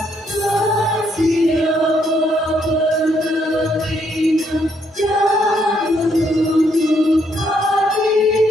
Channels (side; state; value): both; normal; correlation 0.73